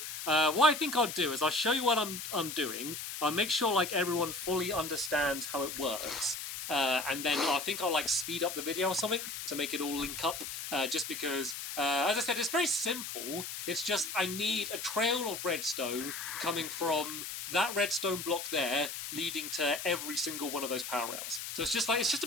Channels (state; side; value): noise; left; hiss, 7 dB below the sound